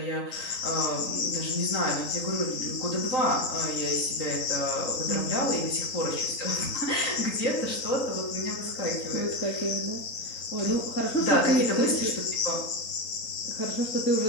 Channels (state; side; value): late; right; 3.9 ms